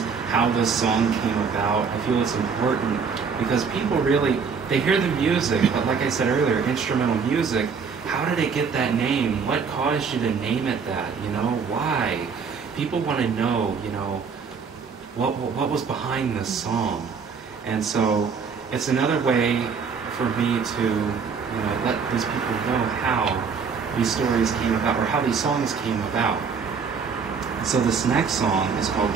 how this song came about. I feel it's important because people they hear the music, but like I said earlier, instrumental music, how did it get that name? What caused you to name it that? Why? People want to know, what was behind this song. And so it's another way for me to, let these people know how these stories came about, or how these songs came about. So this next song is called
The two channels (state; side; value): quieter; left; 5.8 dB